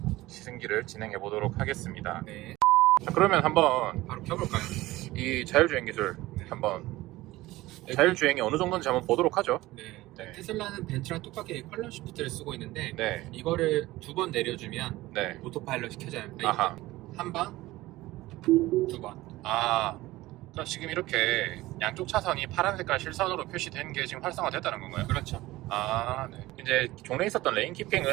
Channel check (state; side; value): quieter; left; 18.1 dB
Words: 시승기를 진행해 보도록 하겠습니다. 네. 자, 그러면 한번 바로 켜볼까요? 이 자율주행 기술 한번 자율주행이 어느 정도인지 한번 보도록 하죠. 네. 네. 테슬라는 벤츠랑 똑같게 컬럼 시프트를 쓰고 있는데 네. 이거를 2번 내려주면 네. 오토파일럿이 켜져요. 아하. 한 번, 2번. 아, 그럼 지금 이렇게 양쪽 차선이 파란 색깔 실선으로 표시된 게 지금 활성화됐다는 건가요? 그렇죠. 아, 네. 이제 종래에 있었던 레인